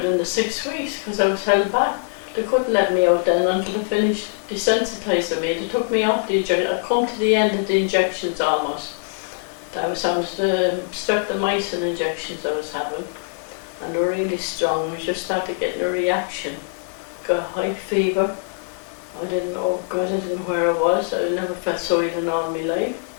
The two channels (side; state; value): right; silent; digital silence